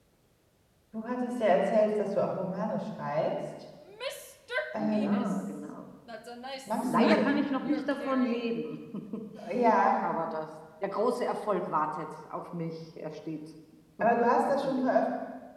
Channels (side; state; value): both; identical; correlation 1.00